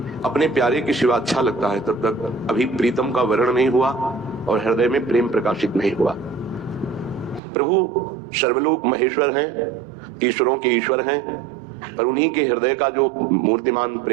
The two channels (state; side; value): drops out; left; at 7.4 s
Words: अपने प्यारे के सिवा अच्छा लगता है तब तक अभी प्रीतम का वर्ण नहीं हुआ और हृदय में प्रेम प्रकाशित नहीं हुआ। प्रभु सर्वलोक महेश्वर हैं, ईश्वरों के ईश्वर हैं, पर उन्हीं के हृदय का जो मूर्तिमान